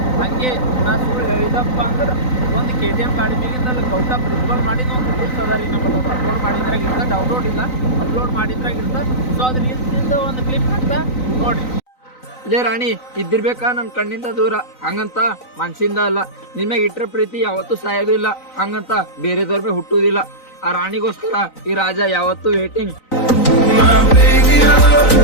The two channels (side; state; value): right; late; 3.9 ms